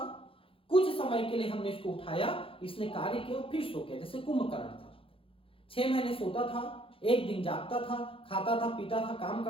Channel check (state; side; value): late; right; 0.26 ms